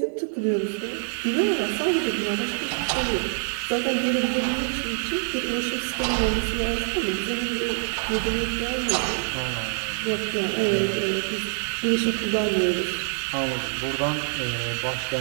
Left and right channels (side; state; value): left; silent; digital silence